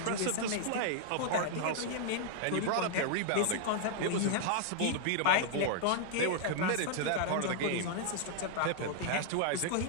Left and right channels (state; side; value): different; both; correlation -0.01